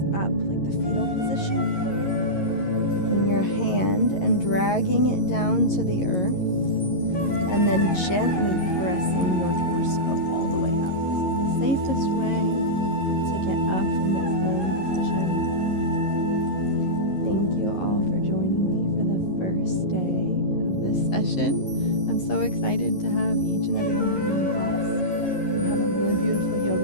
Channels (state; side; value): late; right; 11 ms